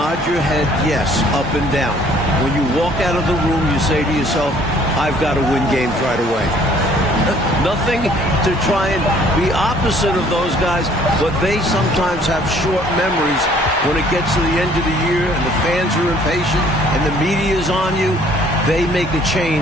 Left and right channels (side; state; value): both; normal; correlation 0.58